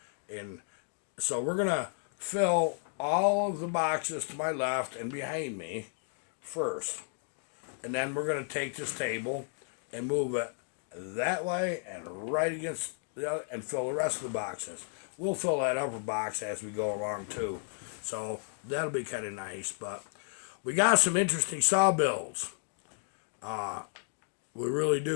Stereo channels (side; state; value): right; silent; 56 dB below the other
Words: And so we're going to fill all of the boxes to my left and behind me first. And then we're going to take this table and move it that way and right against the other and fill the rest of the boxes. We'll fill that upper box as we go along too. So that'll be kind of nice. But we got some interesting saw builds. We really